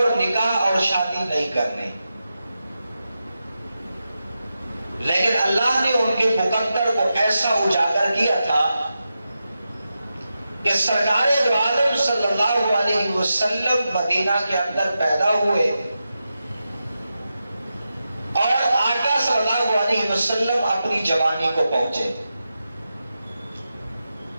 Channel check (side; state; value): both; inverted; correlation -0.90